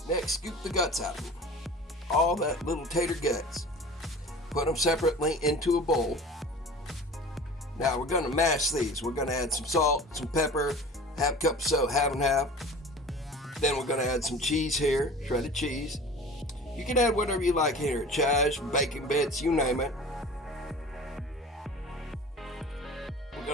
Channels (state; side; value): normal; both; correlation 0.39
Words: Next, scoop the guts out of them. All that little tater guts. Put them separately into a bowl. Now we're going to mash these. We're going to add some salt, some pepper, half cup of soda, half and half. Then we're going to add some cheese here, shredded cheese. You can add whatever you like here, chives, bacon bits, you name it. We're